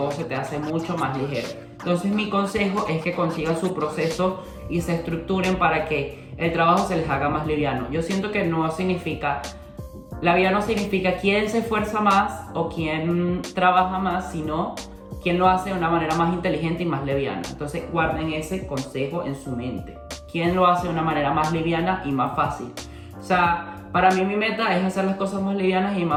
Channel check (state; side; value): identical; both; correlation 1.00